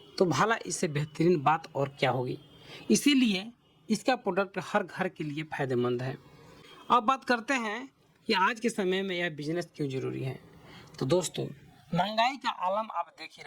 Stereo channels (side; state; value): both; identical; correlation 1.00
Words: तो भला इससे बेहतरीन बात और क्या होगी। इसीलिए इसका प्रोडक्ट हर घर के लिए फ़ायदेमंद है। अब बात करते हैं कि आज के समय में यह बिजनेस क्यों ज़रूरी है। तो दोस्तों, महंगाई का आलम आप देख ही